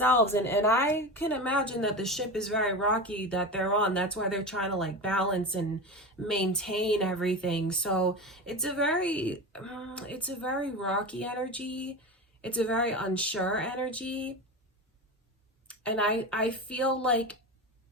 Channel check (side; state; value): both; normal; correlation 0.25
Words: and I can imagine that the ship is very rocky that they're on. That's why they're trying to like balance and maintain everything. So it's a very rocky energy. It's a very unsure energy. And I feel like